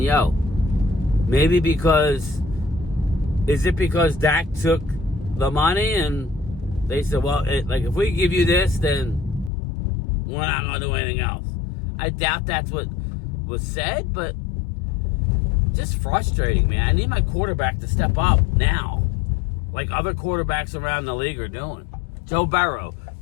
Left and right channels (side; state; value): right; drops out; at 9.5 s